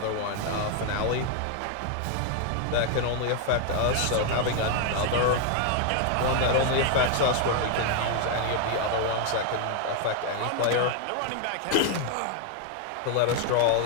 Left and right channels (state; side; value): different; both; correlation 0.00